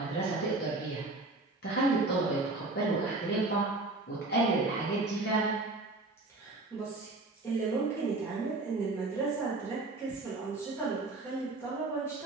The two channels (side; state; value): left; quieter; 3.2 dB